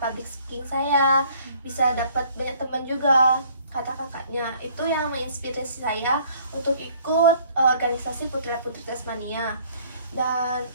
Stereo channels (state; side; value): inverted; both; correlation -0.58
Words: public speaking saya, bisa dapat banyak teman juga, kata kakaknya. Itu yang menginspirasi saya untuk ikut organisasi Putra-Putri Tasmania. Dan